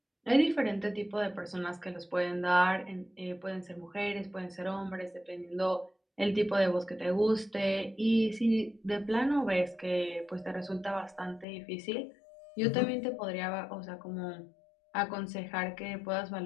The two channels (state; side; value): drops out; right; at 11.5 s